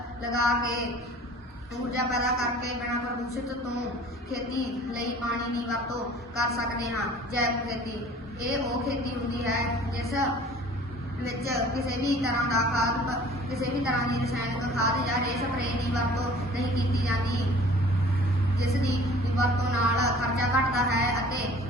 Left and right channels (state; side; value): normal; both; correlation 0.48